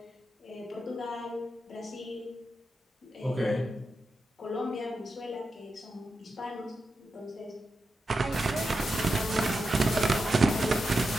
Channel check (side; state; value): both; normal; correlation 0.88